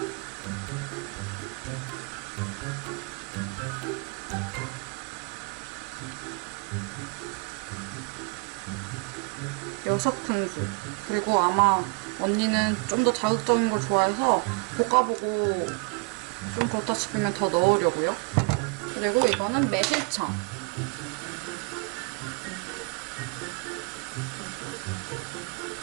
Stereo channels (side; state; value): left; quieter; 34.2 dB